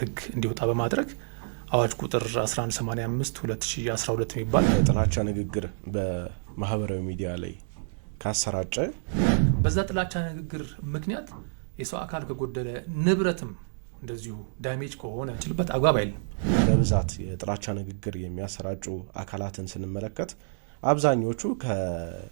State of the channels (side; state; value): left; silent; digital silence